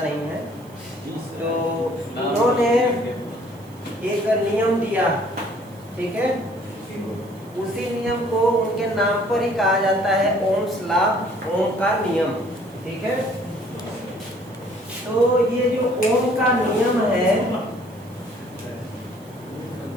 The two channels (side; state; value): right; noise; hiss, 27 dB below the sound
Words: है। तो उन्होंने एक नियम दिया, ठीक है। उसी नियम को उनके नाम पर ही कहा जाता है ओम्स लॉ, ओम का नियम, ठीक है। तो ये जो ओम का नियम है,